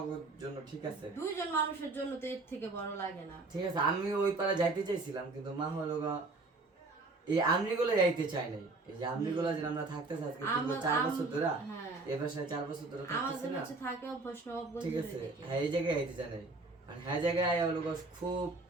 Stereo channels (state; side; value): quieter; left; 3.4 dB